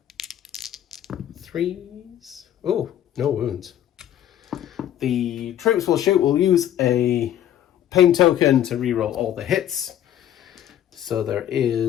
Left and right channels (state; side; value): quieter; right; 11.3 dB